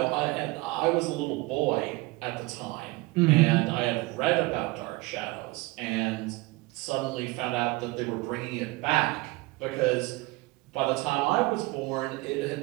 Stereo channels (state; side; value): quieter; left; 22.1 dB